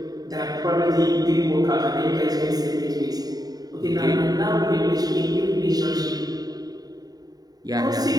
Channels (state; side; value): late; left; 0.18 ms